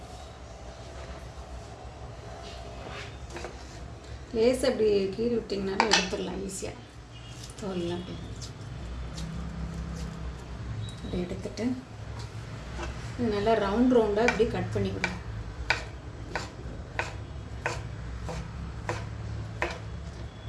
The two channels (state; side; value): identical; both; correlation 1.00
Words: லேசாக அப்படி கீறி விட்டிங்கனாலும் எடுத்துடலாம் ஈஸியாக. தோலெல்லாம் அப்படி எடுத்துட்டு இது நல்லா ரவுண்டாக இப்படி கட் பண்ணிவிடுங்க.